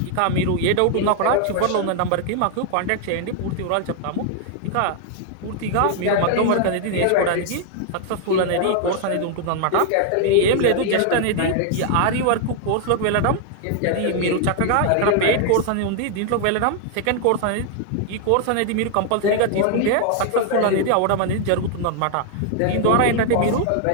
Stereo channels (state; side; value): different; both; correlation 0.00